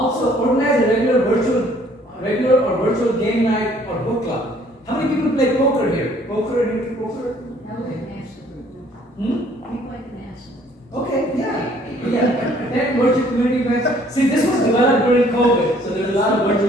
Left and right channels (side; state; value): both; normal; correlation 0.59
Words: organize a regular or virtual game night or book club. How many people play poker here? Poker, any poker? Okay, yeah. That virtual community events. See, this was developed during COVID, so there's a lot of